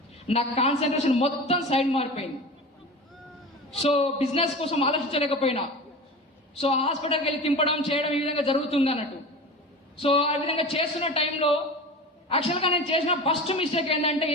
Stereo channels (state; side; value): normal; both; correlation 0.32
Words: నా కాన్సన్ట్రేషన్ మొత్తం సైడ్ మారిపోయింది. సో బిజినెస్ కోసం ఆలోచించలేకపోయినా, సో హాస్పిటల్కి వెళ్ళి తింపడం చేయడం ఈ విధంగా జరుగుతుంది అన్నట్టు. సో ఆ విధంగా చేస్తున్న టైంలో యాక్చువల్గా నేను చేసిన ఫస్ట్ మిస్టేక్ ఏంటంటే,